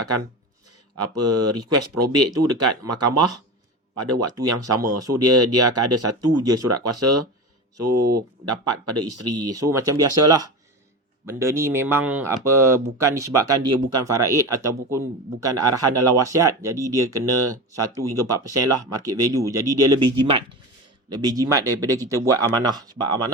akan request probate tu dekat mahkamah pada waktu yang sama. So dia akan ada satu je surat kuasa. So dapat pada isteri. So macam biasalah, benda ni memang bukan disebabkan dia bukan faraid ataupun bukan arahan dalam wasiat, jadi dia kena 1 hingga 4% lah market value. Jadi dia lebih jimat daripada kita buat amanah. Sebab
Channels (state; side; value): normal; both; correlation 0.26